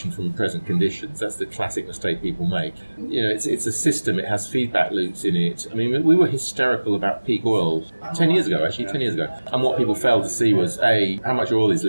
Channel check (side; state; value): both; inverted; correlation -1.00